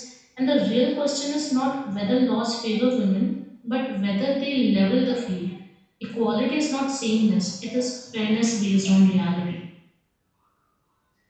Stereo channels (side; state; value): both; identical; correlation 1.00